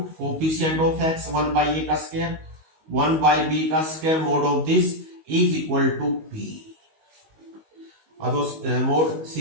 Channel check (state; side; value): late; left; 19 ms